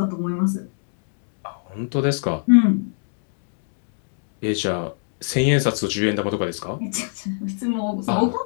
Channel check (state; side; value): silent; right; digital silence